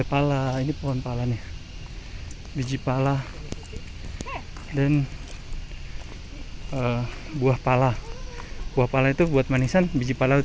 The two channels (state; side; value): identical; both; correlation 1.00